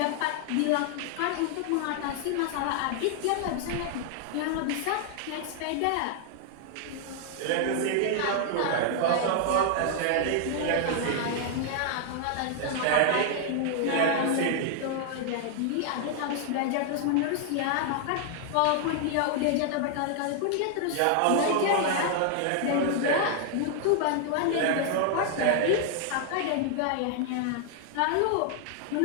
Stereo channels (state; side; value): different; both; correlation 0.00